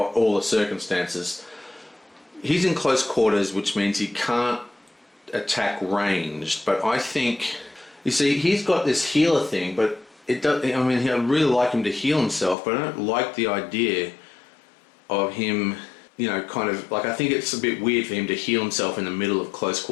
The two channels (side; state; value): right; drops out; at 12.6 s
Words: the circumstances. He's in close quarters, which means he can't attack ranged, but I think, you see, he's got this healer thing, but it does, I'd really like him to heal himself, but I don't like the idea of him, I think it's a bit weird for him to heal himself in the middle of close